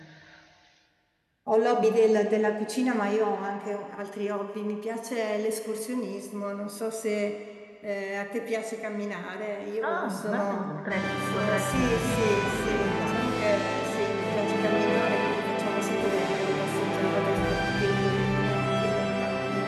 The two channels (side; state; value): both; identical; correlation 1.00